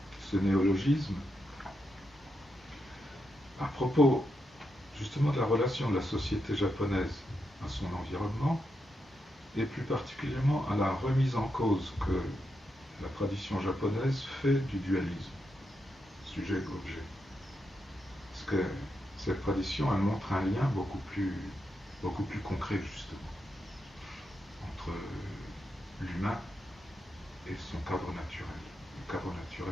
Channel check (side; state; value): both; normal; correlation 0.84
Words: ce néologisme à propos justement de la relation de la société japonaise à son environnement, et plus particulièrement à la remise en cause que la tradition japonaise fait du dualisme, sujet-objet. Parce que cette tradition, elle montre un lien beaucoup plus concret, justement, entre l'humain et son cadre naturel, le cadre